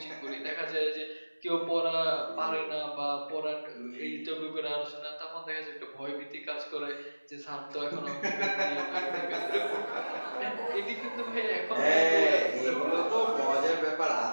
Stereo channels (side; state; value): both; inverted; correlation -1.00